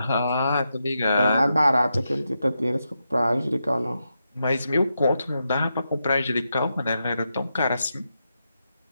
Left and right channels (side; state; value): both; inverted; correlation -0.86